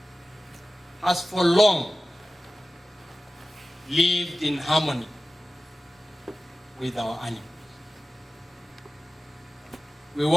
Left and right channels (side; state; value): both; normal; correlation 0.96